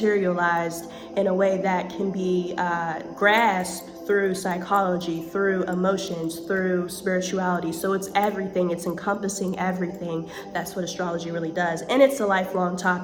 in a way that can be grasped through psychology, through emotions, through spirituality. So it's everything, it's encompassing everything. That's what astrology really does. And it's a lifelong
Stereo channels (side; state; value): both; identical; correlation 1.00